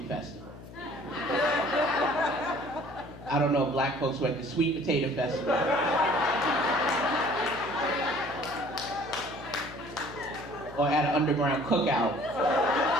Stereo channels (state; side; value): noise; left; hum, 16 dB below the sound